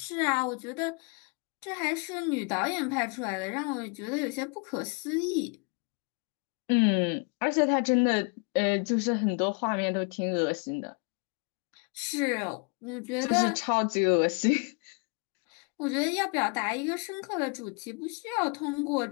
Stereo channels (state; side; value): quieter; right; 34.7 dB